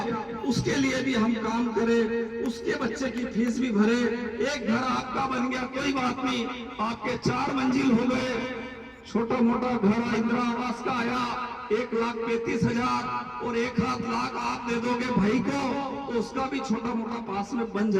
उसके लिए भी हम काम करें, उसके बच्चे की फीस भी भरे। एक घर आपका बन गया कोई बात नहीं, आपके 4 मंजिल हो गए, छोटा मोटा घर इंदिरा आवास का आया 1,35,000 और 1 लाख आप दे दोगे भाई को तो उसका भी छोटा मोटा पास में बन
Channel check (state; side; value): identical; both; correlation 1.00